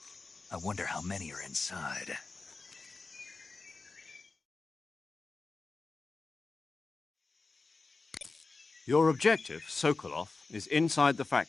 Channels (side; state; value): right; quieter; 3.9 dB